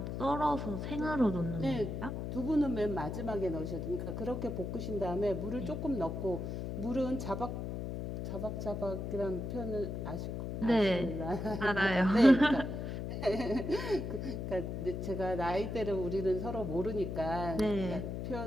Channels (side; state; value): left; noise; hum, 4 dB below the sound